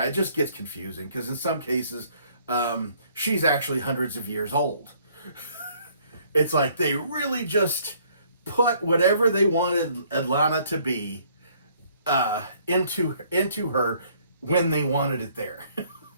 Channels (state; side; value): inverted; both; correlation -0.62